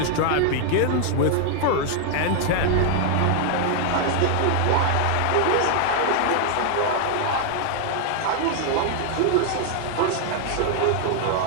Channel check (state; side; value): different; both; correlation 0.00